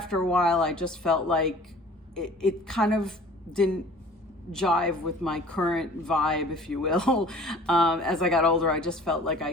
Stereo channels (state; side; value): normal; both; correlation 0.47